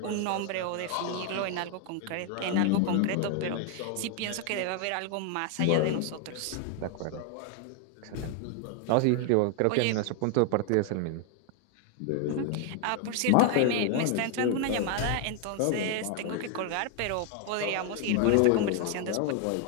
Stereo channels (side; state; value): both; different; correlation 0.00